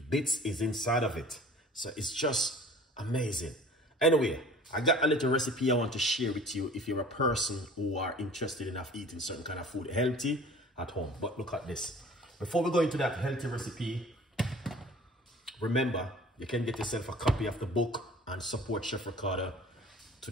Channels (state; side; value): normal; both; correlation 0.46